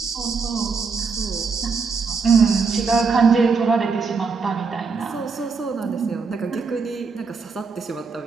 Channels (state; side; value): quieter; left; 5.0 dB